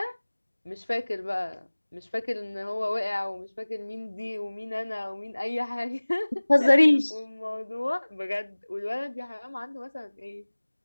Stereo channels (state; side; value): inverted; both; correlation -1.00